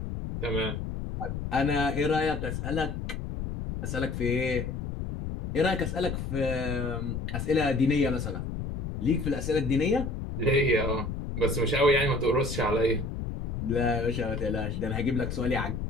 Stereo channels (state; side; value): noise; left; rumble, 5 dB below the sound